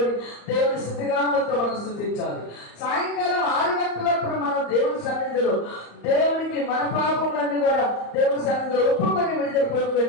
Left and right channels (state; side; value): late; right; 34 ms